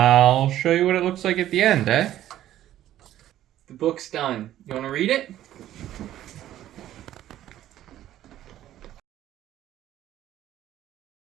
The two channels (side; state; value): left; quieter; 12.8 dB